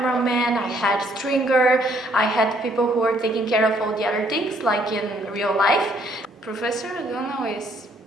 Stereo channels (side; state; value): both; normal; correlation 0.67